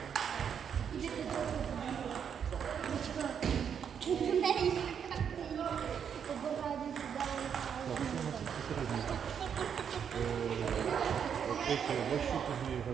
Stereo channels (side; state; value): left; quieter; 7.7 dB